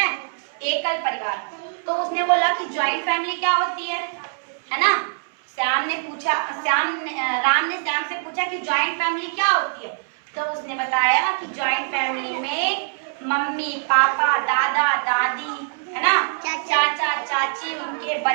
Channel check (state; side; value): silent; left; 63 dB below the other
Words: एकल परिवार। तो उसने बोला कि ज्वाइंट फैमिली क्या होती है ना? राम ने श्याम से पूछा कि ज्वाइंट फैमिली क्या होती है? तो उसने बताया कि ज्वाइंट फैमिली में मम्मी पापा, दादा दादी, है ना, चाचा चाची, उनके